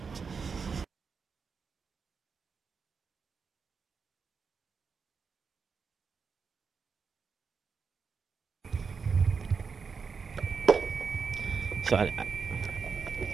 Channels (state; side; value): quieter; left; 5.5 dB